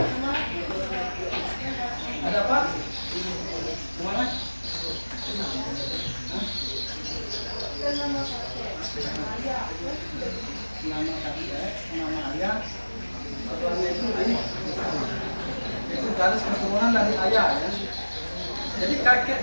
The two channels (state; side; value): inverted; both; correlation -1.00